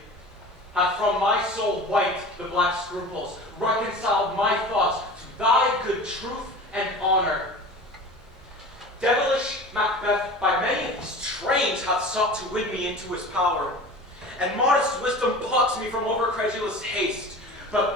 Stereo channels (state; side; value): normal; both; correlation 0.36